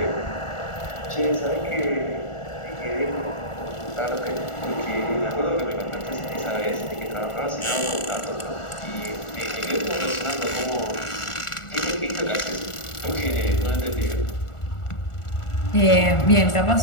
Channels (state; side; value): late; right; 1.4 ms